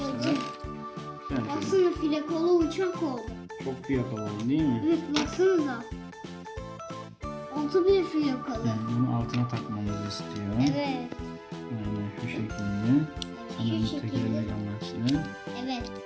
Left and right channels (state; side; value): identical; both; correlation 1.00